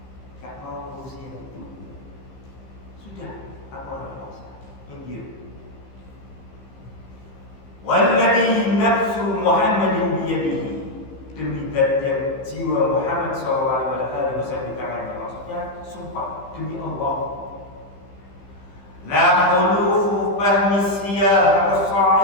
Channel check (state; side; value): late; right; 15 ms